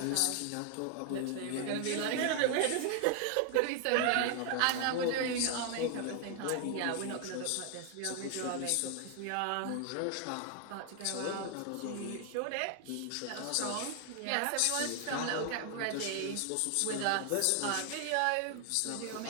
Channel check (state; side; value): different; both; correlation 0.00